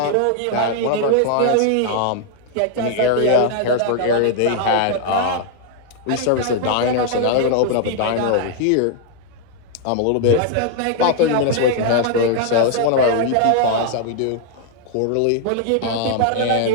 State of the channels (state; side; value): different; both; correlation 0.00